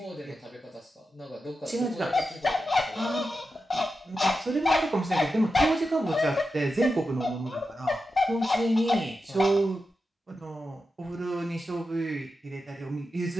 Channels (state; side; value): normal; both; correlation 0.90